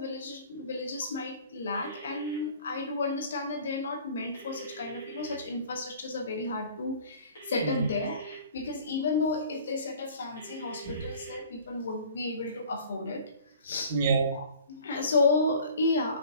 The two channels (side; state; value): both; inverted; correlation -0.48